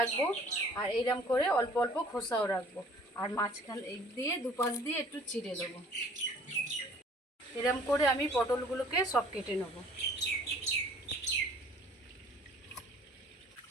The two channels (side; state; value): both; normal; correlation 0.53